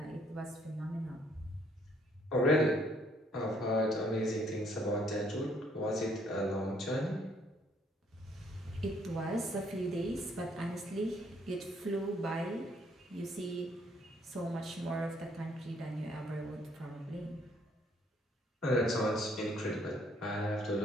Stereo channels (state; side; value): normal; both; correlation 0.66